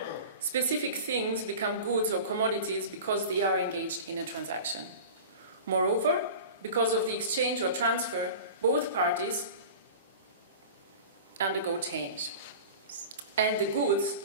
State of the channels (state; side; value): inverted; both; correlation -0.36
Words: Specific things become goods or commodities because they are engaged in a transaction. Moreover, because of the exchange or transfer, both parties undergo change. And the goods